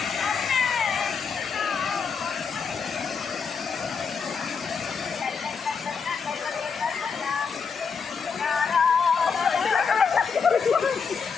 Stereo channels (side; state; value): right; quieter; 5.8 dB